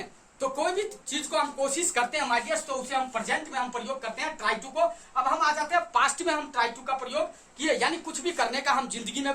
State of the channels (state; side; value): identical; both; correlation 1.00